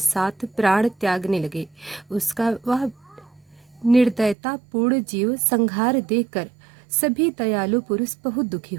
प्राण त्यागने लगे। उसका वह निर्दयतापूर्ण जीव संहार देखकर सभी दयालु पुरुष बहुत दुखी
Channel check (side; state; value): left; drops out; at 4.4 s